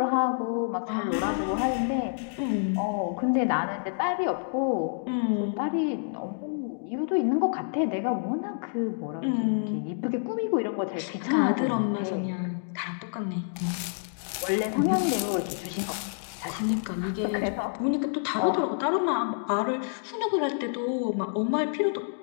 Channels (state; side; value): silent; right; digital silence